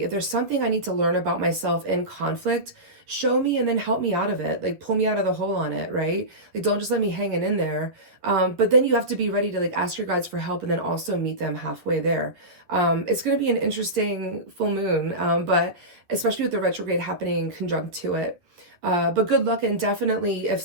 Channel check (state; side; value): late; left; 11 ms